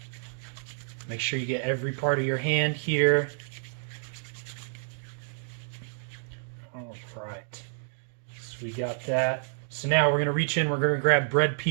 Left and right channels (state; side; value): silent; left; digital silence